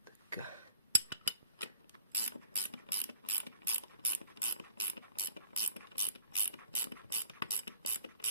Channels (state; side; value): inverted; both; correlation -0.53